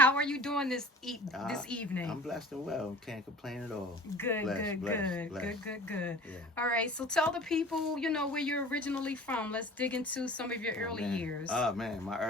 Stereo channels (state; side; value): normal; both; correlation 0.43